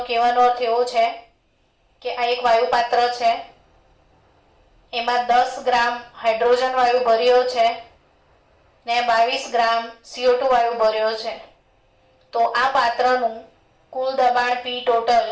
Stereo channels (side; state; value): both; identical; correlation 1.00